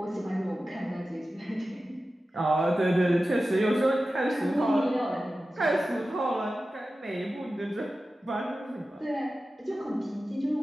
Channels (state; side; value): normal; both; correlation 0.94